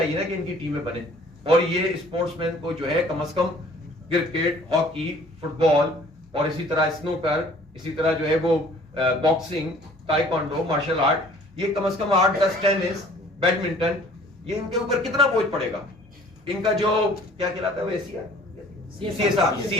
نا کہ ان کی ٹیمیں بنے, اور یہ اسپورٹس مین کو جو ہے کم از کم کرکٹ, ہاکی, فٹ بال, اور اسی طرح اسنوکر, اسی طرح جو ہے وہ باکسنگ, تائیکوانڈو, مارشل آرٹ, یہ کم از کم 8-10, ٹینس, بیڈمنٹن, یہ ان کے اوپر کتنا بوجھ پڑے گا. ان کا جو کیا کہلاتا ہے وہ سی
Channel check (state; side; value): normal; both; correlation 0.53